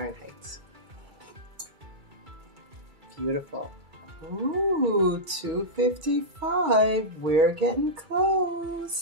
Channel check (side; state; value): left; late; 2.3 ms